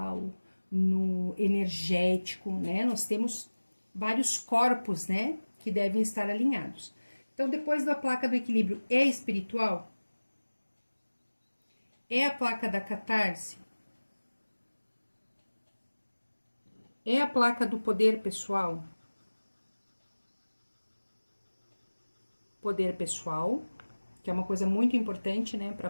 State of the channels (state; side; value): inverted; both; correlation -1.00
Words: no energético, né? Nós temos vários corpos, né, que devem estar alinhados. Então, depois da placa do equilíbrio, é espiritual? É a placa da catarse? É a placa do poder pessoal? Poder pessoal, que é uma coisa muito importante, né, para